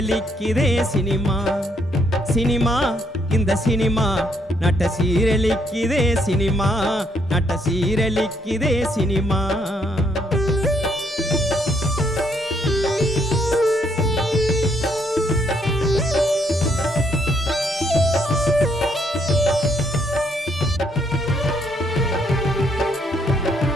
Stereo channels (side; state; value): both; normal; correlation 0.71